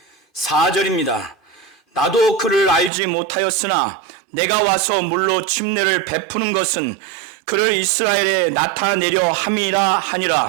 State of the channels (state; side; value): drops out; left; at 2.9 s